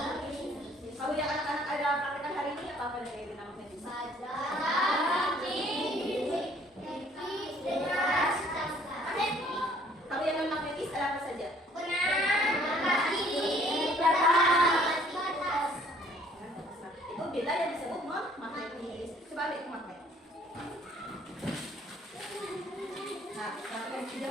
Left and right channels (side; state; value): both; normal; correlation 0.59